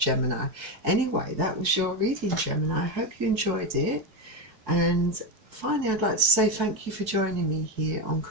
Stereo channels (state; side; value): late; left; 4.6 ms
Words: Anyway, that was your reading, Gemini. I hope you enjoyed it. And finally, I'd like to say thank you for joining me here on